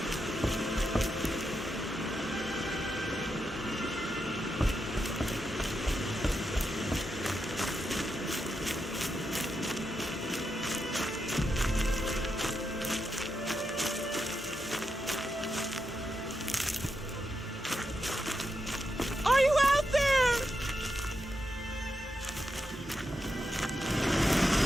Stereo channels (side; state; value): both; normal; correlation 0.85